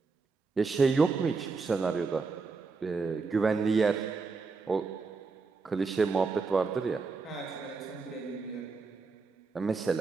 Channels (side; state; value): left; quieter; 4.5 dB